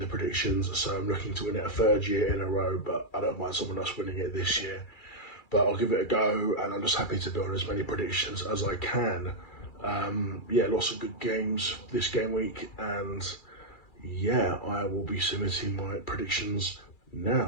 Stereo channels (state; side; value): late; right; 2.3 ms